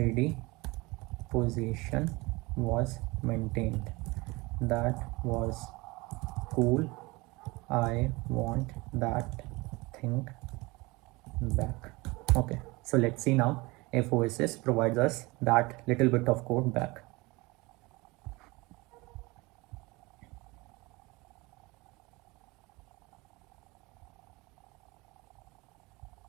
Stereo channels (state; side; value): quieter; left; 23.7 dB